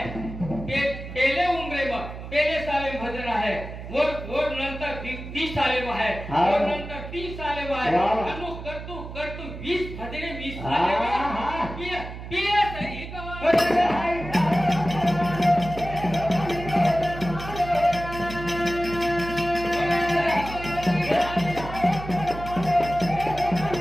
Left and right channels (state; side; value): noise; right; hum, 10 dB below the sound